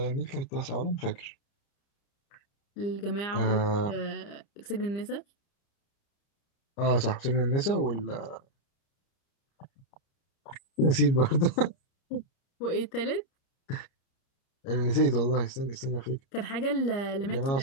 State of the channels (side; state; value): right; late; 30 ms